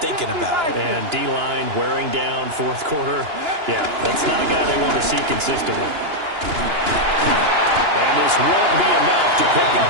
thinking about it. And D-line wearing down 4th quarter. Yeah, that's not a guy they want to see consistently. And this won't be enough to pick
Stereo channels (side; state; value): left; late; 2.9 ms